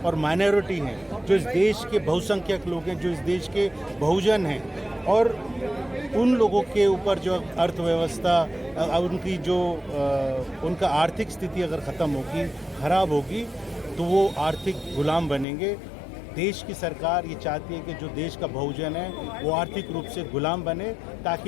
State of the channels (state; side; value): drops out; right; at 15.5 s